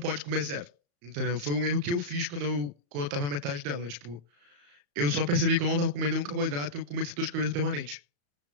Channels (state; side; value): late; left; 34 ms